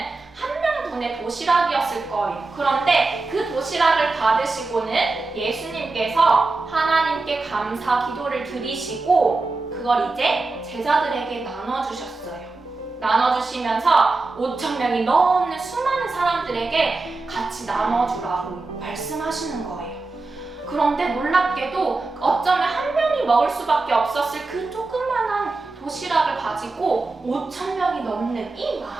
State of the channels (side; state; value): left; quieter; 3.5 dB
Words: 한 명분의 도시락이었을 거예요. 그런데 그 도시락을 받으시고는 예수님께서 하나님께 감사 기도를 드리시고 그걸 이제 제자들에게 나눠주셨어요. 나눠주시면서 5,000명이 넘는 수많은 사람들에게 같이 나눠주라고 말씀하시는 거예요. 그런데 놀랍게도 어쩌면 한 명이 먹을 수밖에 없었을 그 조그만한 도시락을 가지고 5,000명이 넘는 이